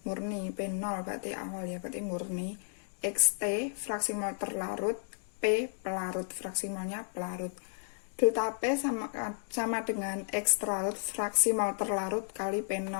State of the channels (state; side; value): silent; right; digital silence